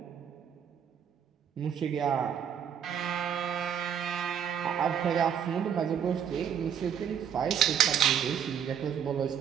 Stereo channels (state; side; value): quieter; left; 8.5 dB